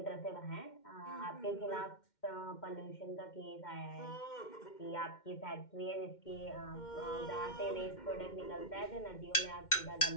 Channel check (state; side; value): late; right; 2.1 ms